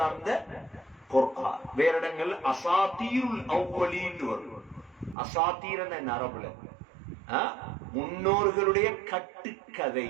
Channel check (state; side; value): drops out; left; at 5.2 s